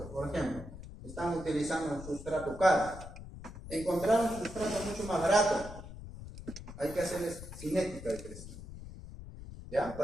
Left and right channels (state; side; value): noise; left; rumble, 12 dB below the sound